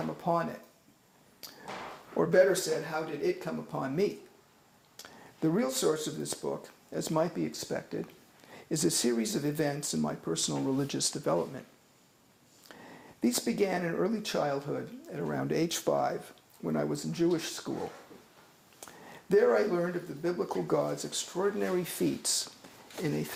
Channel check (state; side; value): identical; both; correlation 1.00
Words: upon it? Or better said, how did it come upon me? The real source of this book, as might be expected, is a series of events in my personal religious development. These began in early childhood at around age 5 when I was in Jewish school. There I learned of the biblical God's extraordinary feats in a